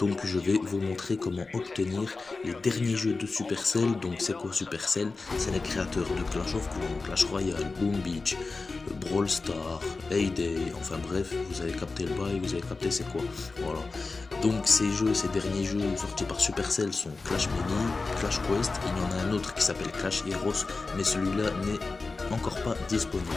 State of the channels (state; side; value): quieter; right; 3.9 dB